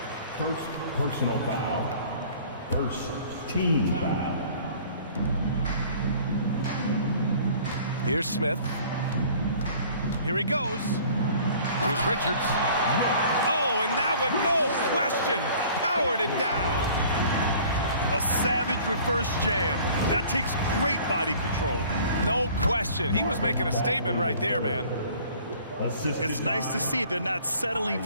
First personal foul. First team foul. Here's Smith. Here he goes. Here's Richards. Oh, and that one, no question, powered it down. A savage reverse jam. That takes great body control. No question. He was making a statement right there, man. It's nice to see they're not settling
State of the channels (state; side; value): inverted; both; correlation -0.51